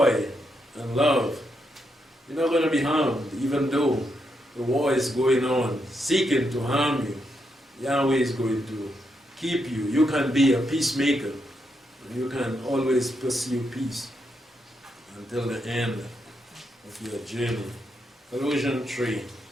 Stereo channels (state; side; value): normal; both; correlation 0.81